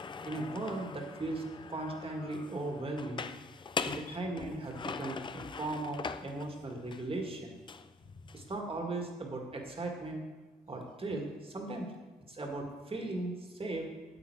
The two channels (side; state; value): both; normal; correlation 0.59